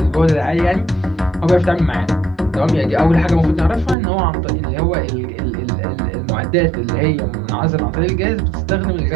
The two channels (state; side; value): drops out; left; at 4.0 s